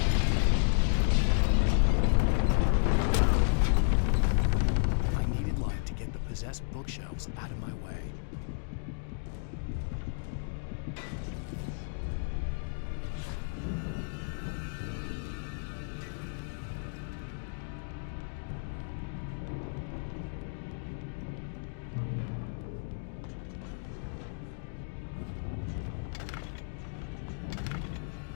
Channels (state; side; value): silent; right; digital silence